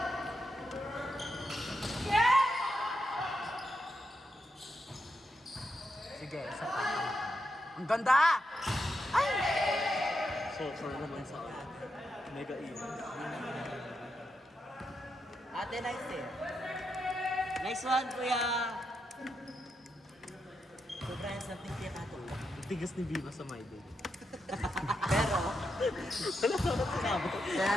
Sige, isa pa. Ang ganda! Ay! So naman sa mega event. Ate, nice eh. Nice one, Kuya! Sobrang something kaya katulog. Tigas ni Viva sa my day. Pero, Wala na sinabi.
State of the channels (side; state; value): both; normal; correlation 0.84